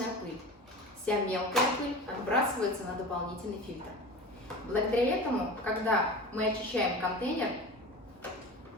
пыль. Вся мелкая пыль отбрасывается на дополнительный фильтр. Благодаря этому, когда мы очищаем контейнер,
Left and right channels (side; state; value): both; normal; correlation 0.33